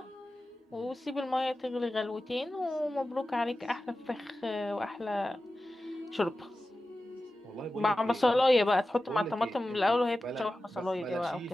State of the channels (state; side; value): normal; both; correlation 0.94